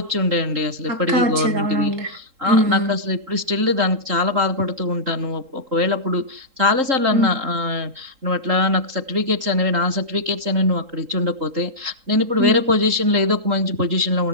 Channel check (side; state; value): left; late; 3.8 ms